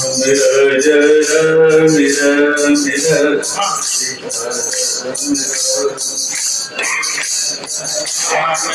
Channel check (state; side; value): identical; both; correlation 1.00